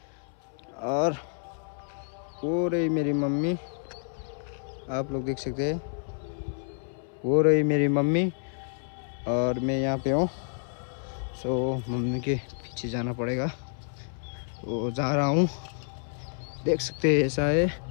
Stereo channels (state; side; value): silent; right; 57 dB below the other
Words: और वो रही मेरी मम्मी, आप लोग देख सकते हैं, वो रही मेरी मम्मी और मैं यहाँ पे हूँ। सो मम्मी के पीछे जाना पड़ेगा, तो जा रहा हूँ। देख सकते हैं ऐसा है